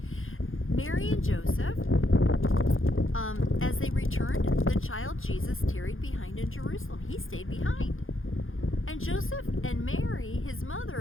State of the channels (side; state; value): right; late; 0.59 ms